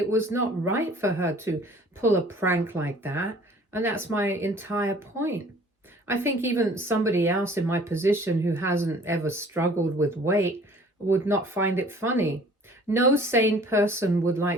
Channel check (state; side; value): normal; both; correlation 0.52